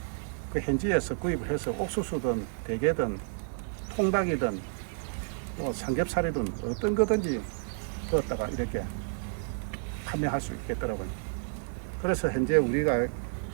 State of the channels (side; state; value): left; silent; 57 dB below the other